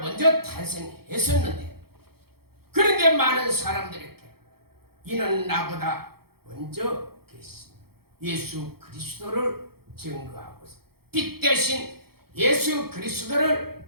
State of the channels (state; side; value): late; left; 0.95 ms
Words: 탄생했었는데 그런데 많은 사람들에게 이는 나보다 먼저 계신 예수 그리스도를 증거하고 있습니다. 빛 대신 예수